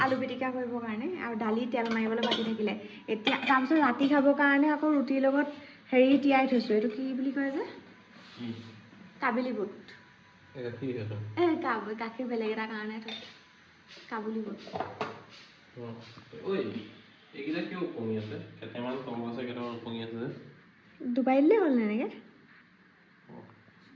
আলু পিটিকা কৰিবৰ কাৰণে আৰু দালি তেল মাৰিবলৈ বাকী থাকিলে এতিয়া তাৰপিছত ৰাতি খাবৰ কাৰণে আকৌ ৰুটিৰ লগত হেৰি তিয়াই থৈছোঁ এইটো কি বুলি কয় যে কাবেলি বুট গাখীৰ বেলেগ এটা কাৰণে থৈছোঁ কাবুলি বুট ডুবাই দিলেই হ'ল এনেকৈ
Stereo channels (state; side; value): identical; both; correlation 1.00